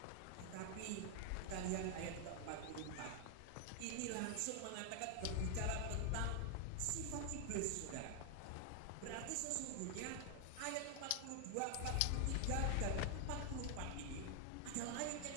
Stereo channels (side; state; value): both; different; correlation 0.00